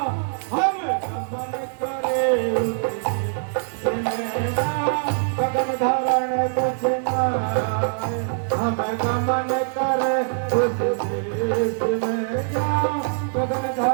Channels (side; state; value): left; silent; 63 dB below the other